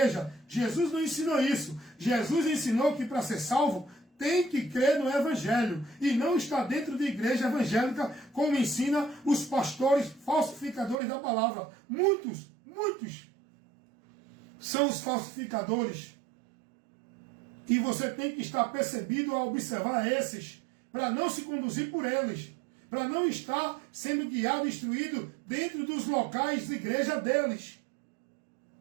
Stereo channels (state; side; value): drops out; left; at 11.0 s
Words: Jesus não ensinou isso. Jesus ensinou que para ser salvo tem que crer no Evangelho e não estar dentro de igreja evangélica como ensina os pastores falsificadores da palavra. Muitos são os falsificadores. E você tem que estar percebido a observar esses, para não se conduzir por eles, para não estar sendo guiado e instruído dentro dos locais de igreja deles.